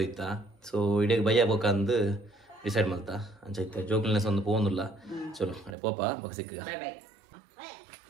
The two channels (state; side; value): drops out; left; at 5.8 s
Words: ಸೊ ಇಡೀ ಬಯ್ಯ ಬೋಕಂದು ಡಿಸೈಡ್ ಮಾಡ್ತಾ ಅಂಚ ಐತೆ ಜೋಕುಲ್ನೆಸ್ ಒಂದು ಪೋಂದಿಲ್ಲ. ಚಲೋ ಅಡೆ ಪೋಪ ಬೊಕ್ಕ ಸಿಕ್ಕ.